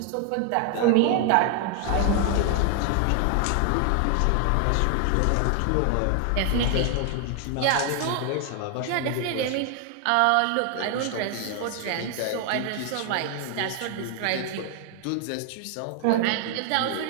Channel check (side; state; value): both; different; correlation 0.00